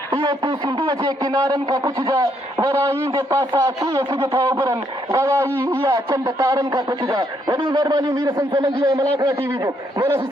इहो तूं सिंधूअ जे किनारनि खां पुछजां वराई जे पासा कीअं सिज था उभरनि गवाही इहा चंद तारनि खां पुछजां वॾी महिरबानी मीर सन सोलंकी ऐं मलाकरा टीवी जो मौला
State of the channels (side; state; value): both; normal; correlation 0.73